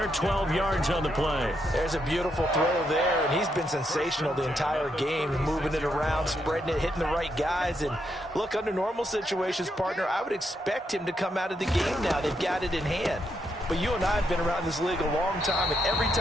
12 yards on the play. There's a beautiful throw there, and he's been sensational the entire game, moving it around, spreading it, hitting the right guys. And look, under normal situations, partner, I would expect him to come out of the game now. They've got it in hand. But you and I have been around this league a long time, and every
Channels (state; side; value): normal; both; correlation 0.79